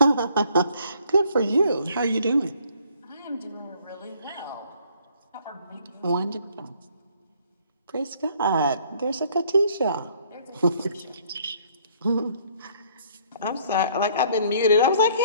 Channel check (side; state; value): both; inverted; correlation -0.61